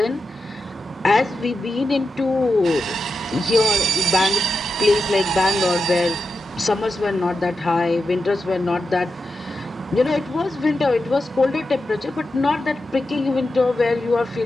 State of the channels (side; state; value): both; normal; correlation 0.89